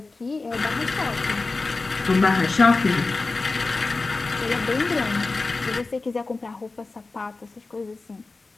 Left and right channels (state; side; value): quieter; right; 3.6 dB